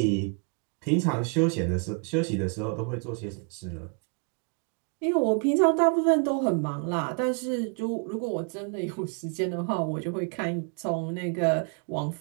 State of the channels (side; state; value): left; quieter; 39.0 dB